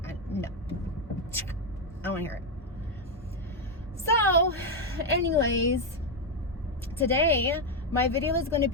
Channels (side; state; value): both; normal; correlation 0.04